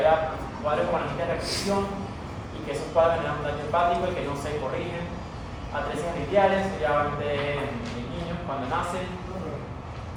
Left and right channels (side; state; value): both; identical; correlation 1.00